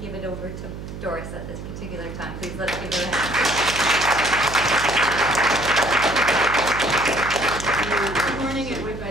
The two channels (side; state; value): right; noise; hum, 10 dB below the sound